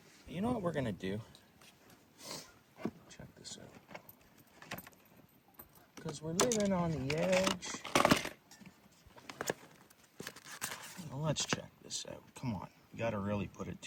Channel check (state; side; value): identical; both; correlation 1.00